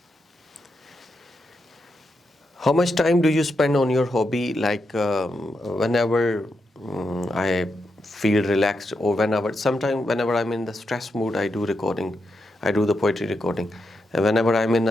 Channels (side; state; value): both; normal; correlation 0.84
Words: How much time do you spend on your hobby? Like whenever I feel relaxed, or whenever I'm in the stress mood, I do recording. I do the poetry recording, And whenever I'm in